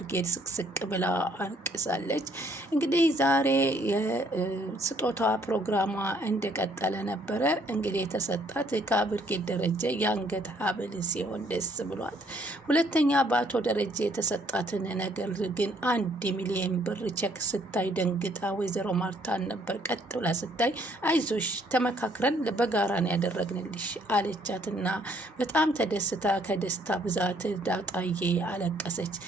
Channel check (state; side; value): normal; both; correlation 0.65